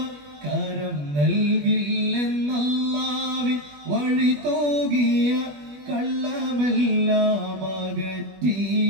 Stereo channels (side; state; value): left; late; 20 ms